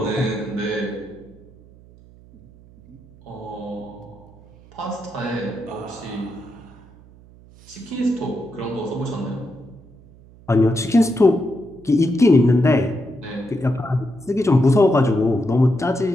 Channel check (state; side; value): noise; right; hum, 24 dB below the sound